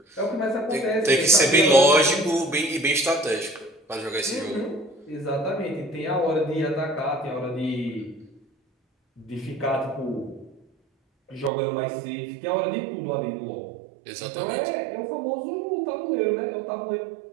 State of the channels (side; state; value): left; drops out; at 11.5 s